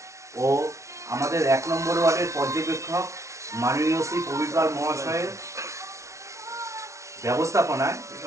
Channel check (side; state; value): left; late; 0.14 ms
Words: ও আমাদের 1 নম্বর ওয়ার্ডের পর্যবেক্ষক মাননীয় শ্রী প্রবীর পাল মহাশয়ের ব্যবস্থাপনায়